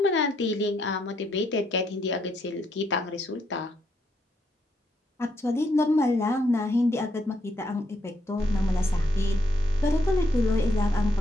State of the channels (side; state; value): both; normal; correlation 0.76